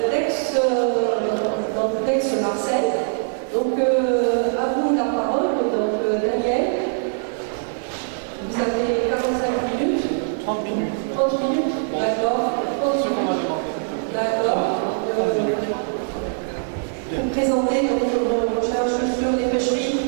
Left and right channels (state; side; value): silent; left; digital silence